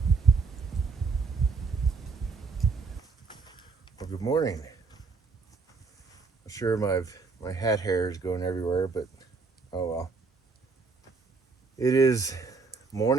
morning. I'm sure my hat hair is going everywhere, but oh well. It is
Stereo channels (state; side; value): quieter; left; 4.6 dB